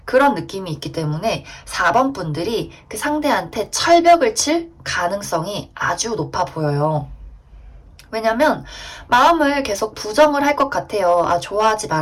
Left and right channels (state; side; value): identical; both; correlation 1.00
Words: 그런 느낌이 있기 때문에 4번 분들이 그 상대한테 철벽을 칠 가능성이 아주 높아 보여요. 왜냐면 마음을 계속 부정을 할 것 같아요. 아, 좋아하지